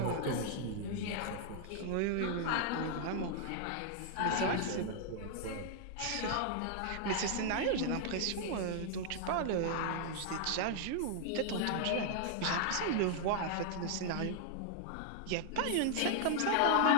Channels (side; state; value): both; different; correlation -0.01